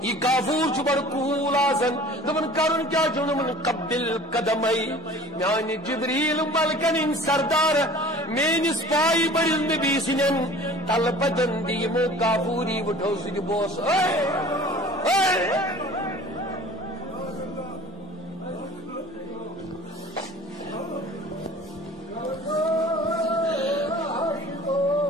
یہ کافور چھ بڑ کوول آسن. دمن کرن کیا چھ دمن قبل قدمئی میانی جبریل ملکن سردار مینس پائی بڑن نبی سنن تل بدن دیمو کافوری وٹھو سن بوس.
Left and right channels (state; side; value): normal; both; correlation 0.45